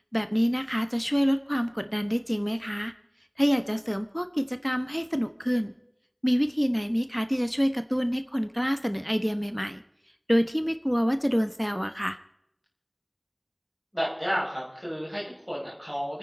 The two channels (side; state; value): both; identical; correlation 1.00